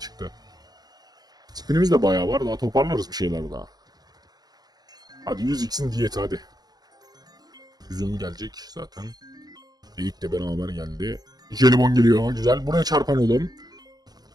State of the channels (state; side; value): late; left; 0.19 ms